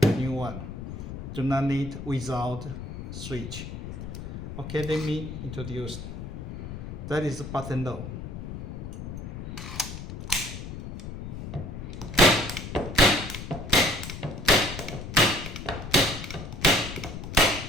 one do not need without switch. Okay, let me introduce. That is button low.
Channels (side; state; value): left; noise; rumble, 8 dB below the sound